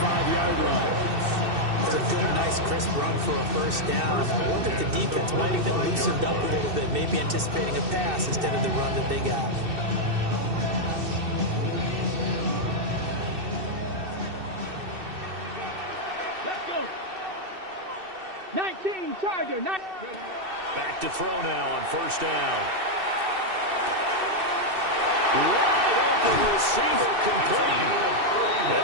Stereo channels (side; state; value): left; late; 2.6 ms